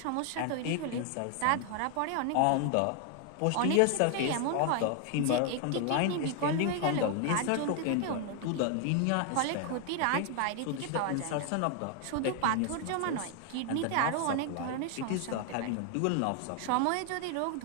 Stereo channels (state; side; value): different; both; correlation 0.00